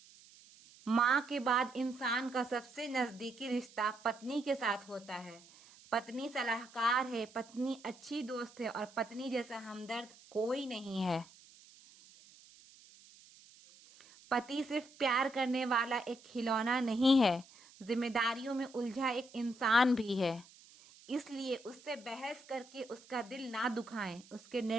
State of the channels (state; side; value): noise; right; hiss, 23 dB below the sound